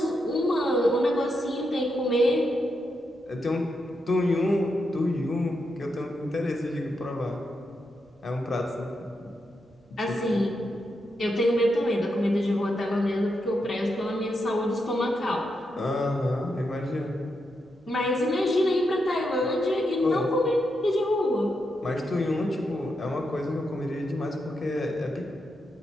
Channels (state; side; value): normal; both; correlation 0.84